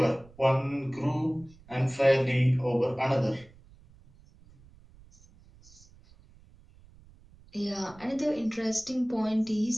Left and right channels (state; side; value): noise; right; rumble, 25 dB below the sound